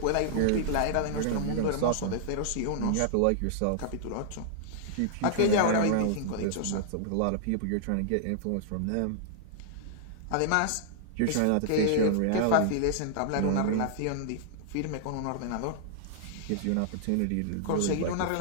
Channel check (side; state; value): both; different; correlation -0.01